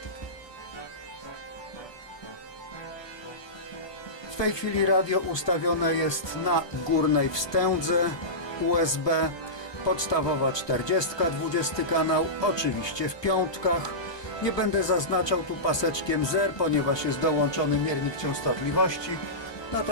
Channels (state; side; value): late; right; 1.2 ms